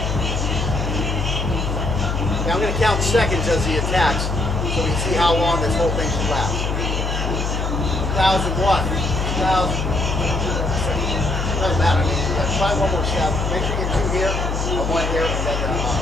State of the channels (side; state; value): left; noise; hum, 1 dB below the sound